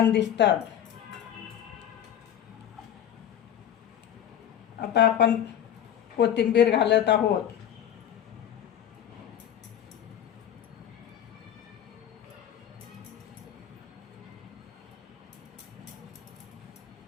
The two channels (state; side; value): quieter; right; 10.2 dB